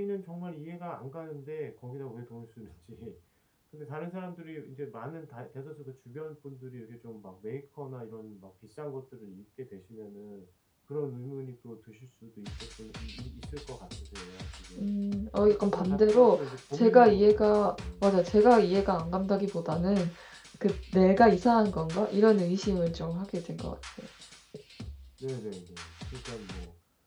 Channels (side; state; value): both; identical; correlation 1.00